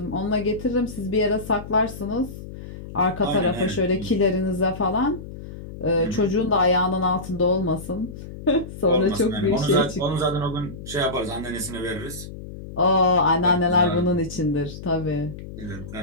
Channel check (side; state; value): left; noise; hum, 12 dB below the sound